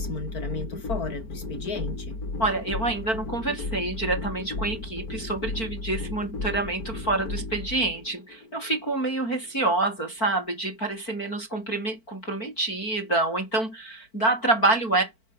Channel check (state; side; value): late; right; 4.5 ms